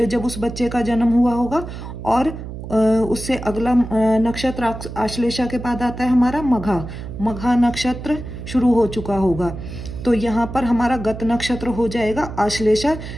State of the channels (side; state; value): right; noise; hum, 10 dB below the sound